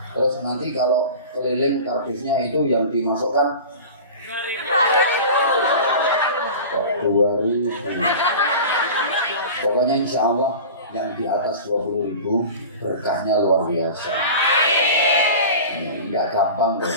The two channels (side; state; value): both; inverted; correlation -0.35